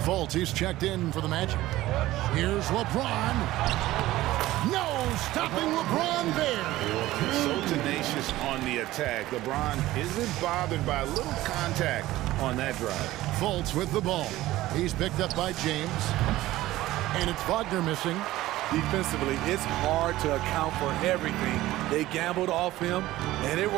Fultz, he's checked in for the Magic. Here's LeBron. No, stopping LeBron there. So tenacious on the attack. LeBron isn't bothered by a little contact on that drive. Fultz with the ball. He's picked up by James. And it's Wagner missing. Defensively, it's hard to account for everything. They gambled off him, and it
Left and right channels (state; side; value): quieter; left; 16.3 dB